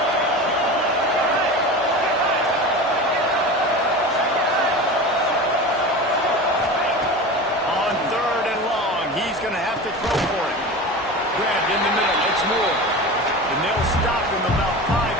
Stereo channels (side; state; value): both; normal; correlation 0.30